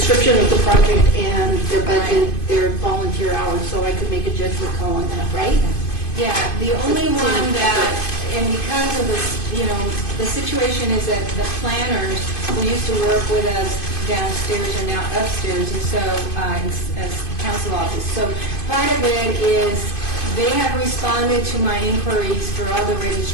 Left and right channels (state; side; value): late; right; 2.5 ms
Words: of the project and their budget, their volunteer hours, so I could make a judgment call on that, right? Yeah, the only one that, and because of this, the situation is that the planners who used to work with us downstairs are now upstairs, and so, as council office. So part of it is they have responded to my inquiries for all the